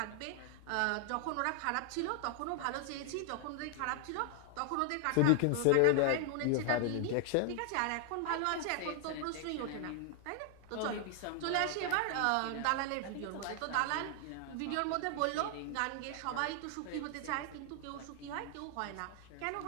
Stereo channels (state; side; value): different; both; correlation 0.00